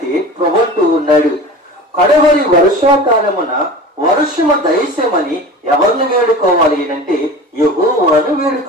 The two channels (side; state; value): both; normal; correlation 0.36